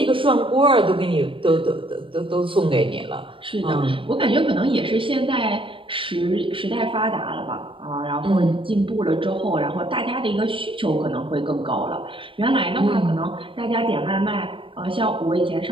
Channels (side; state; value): left; late; 0.25 ms